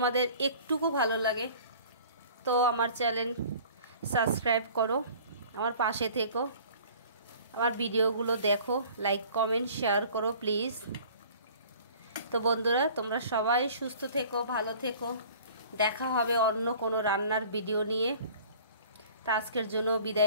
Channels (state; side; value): inverted; both; correlation -0.48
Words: একটুকু ভালো লাগে তো আমার চ্যানেল সাবস্ক্রাইব করো, আমার পাশে থেকো, আমার ভিডিওগুলো দেখো, লাইক কমেন্ট শেয়ার করো প্লিজ। তো বন্ধুরা, তোমরা সবাই সুস্থ থেকো, ভালো থেকো। দেখা হবে অন্য কোনো রান্নার ভিডিও নিয়ে। তা আজকের জন্য